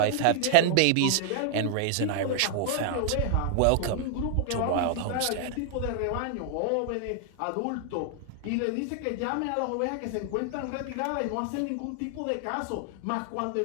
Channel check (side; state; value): both; different; correlation -0.01